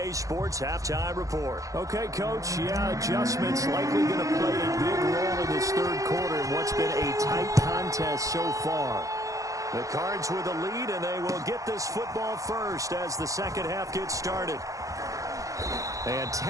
Sports Halftime Report. Okay, Coach, adjustments likely going to play a big role in this third quarter in what's been a tight contest so far. The Cards with the lead, and they will get this football first as the second half gets started. And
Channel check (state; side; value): late; left; 0.16 ms